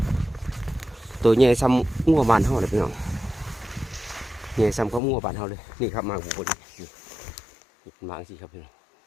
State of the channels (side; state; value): right; drops out; at 5.0 s